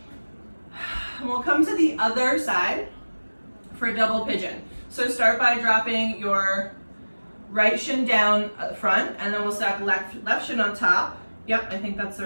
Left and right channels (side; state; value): both; inverted; correlation -1.00